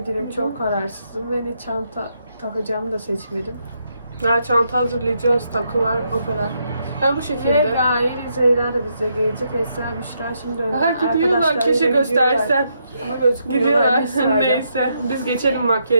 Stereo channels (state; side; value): inverted; both; correlation -0.78